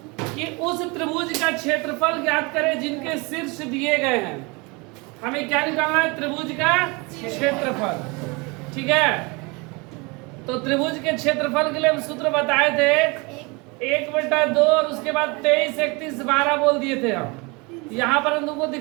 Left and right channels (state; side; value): quieter; left; 27.6 dB